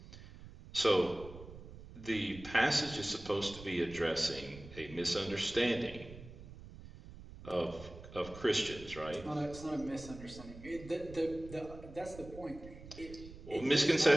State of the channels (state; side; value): noise; right; rumble, 16 dB below the sound